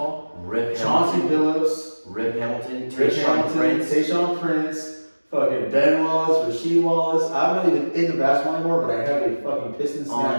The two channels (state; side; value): inverted; both; correlation -1.00